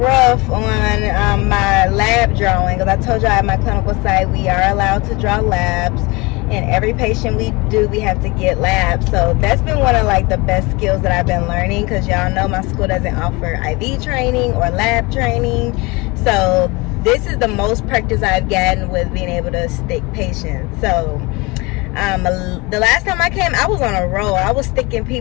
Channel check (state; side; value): quieter; right; 25.2 dB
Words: on my lab drawing, because I told you at my clinical site we are allowed to draw labs, and every patient we do, we have to get labs. So that's been one of like the best skills that I've been learning, because y'all know my school doesn't offer IV training or lab training. So this is the most practice I've gotten with being able to stick patients. So the last time I came, I was on a roll. I was sticking